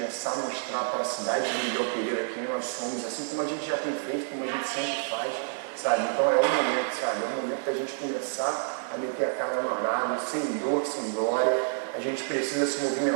a mostrar para a cidade de Miguel Pereira quem nós somos, assim como a gente já tem feito, como a gente sempre faz, sabe? Então é o momento, sabe? É o momento da gente começar a meter a cara no arado, sem dor, sem glória. A gente precisa se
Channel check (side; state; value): left; silent; digital silence